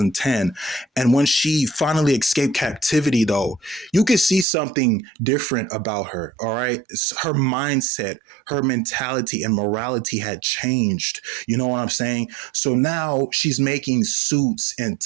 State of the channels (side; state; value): left; drops out; at 4.5 s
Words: And when she finally escaped captivity, though, you could see something different about her. All right. Her mindset, her mentality, and morality had changed. You know what I'm saying? So now she's making suits and